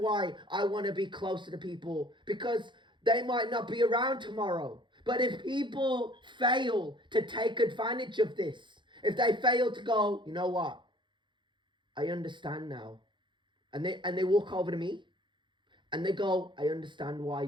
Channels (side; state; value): left; late; 0.23 ms